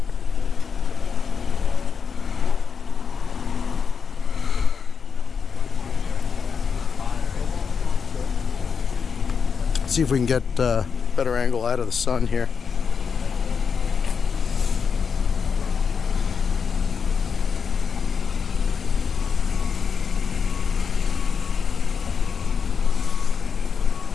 See if we can get a better angle out of the sun here.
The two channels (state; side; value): quieter; right; 6.1 dB